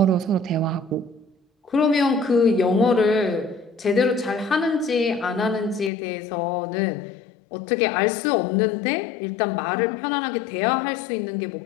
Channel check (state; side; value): drops out; right; at 5.9 s